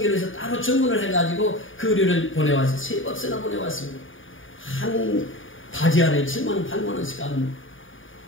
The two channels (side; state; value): right; late; 0.57 ms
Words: 해서 따로 주문을 해가지고 그 의류를 보내왔어요. 3박스나 보내왔습니다. 한 바지 안에 7만원, 8만원씩 하는